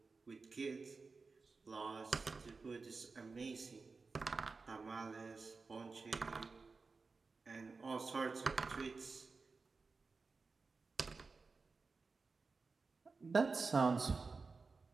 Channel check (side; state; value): left; quieter; 4.3 dB